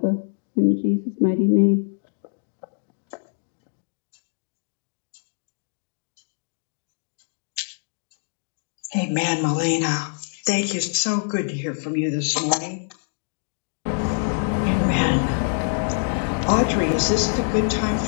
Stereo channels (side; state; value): right; silent; digital silence